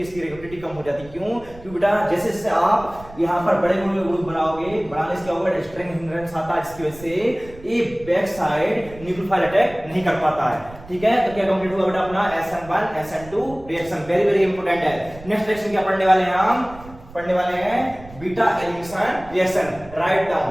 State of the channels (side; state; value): right; noise; rumble, 18 dB below the sound